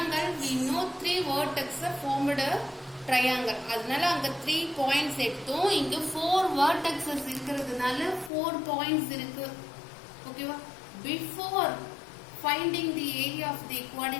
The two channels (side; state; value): right; drops out; at 8.3 s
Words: we know 3 vertices formed a triangle. அதனால அங்க 3 points எடுத்தோம். இங்க 4 vertices இருக்கிறதுனால 4 points இருக்கு. ஓகேவா? Before finding the area of the